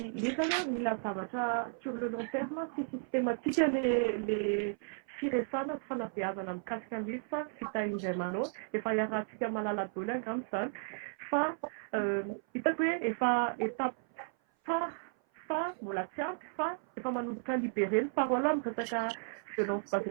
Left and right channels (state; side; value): silent; left; 55 dB below the other